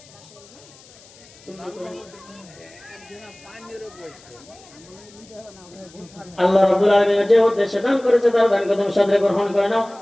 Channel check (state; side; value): noise; left; hiss, 24 dB below the sound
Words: আল্লাহ রাব্বুল আলামিন যে উদ্দেশ্যে দান করেছে তার দানকে তুমি সাদরে গ্রহণ করে নাও।